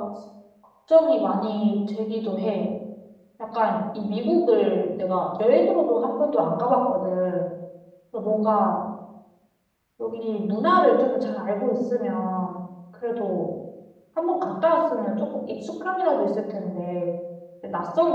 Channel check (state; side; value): identical; both; correlation 1.00